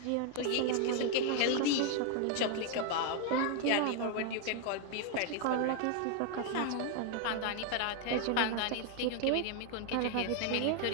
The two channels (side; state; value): both; different; correlation 0.00